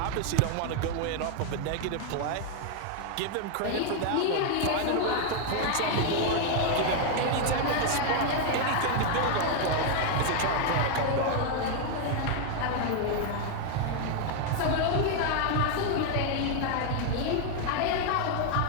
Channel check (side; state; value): both; different; correlation 0.00